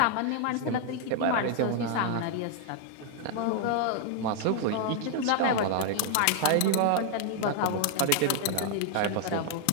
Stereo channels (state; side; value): different; both; correlation 0.00